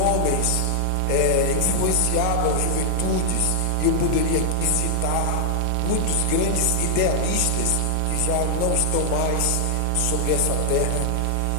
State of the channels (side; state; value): both; different; correlation 0.00